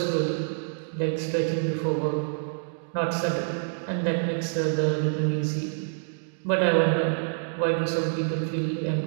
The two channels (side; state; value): left; silent; digital silence